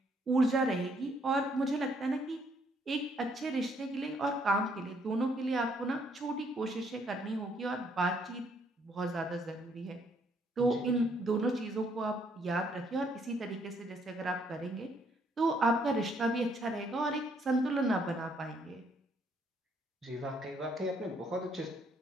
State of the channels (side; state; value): both; normal; correlation 0.69